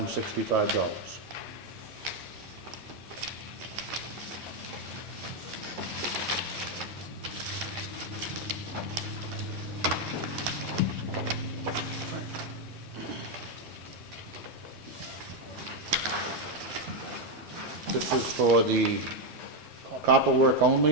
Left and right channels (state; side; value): normal; both; correlation 0.04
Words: This is for the copper work